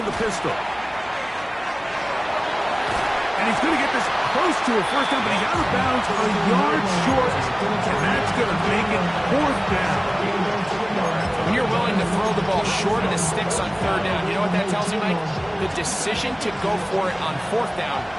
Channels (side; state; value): right; noise; hum, 25 dB below the sound